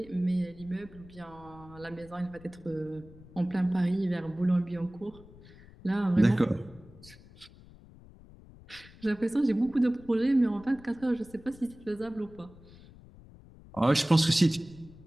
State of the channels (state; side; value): noise; left; rumble, 21 dB below the sound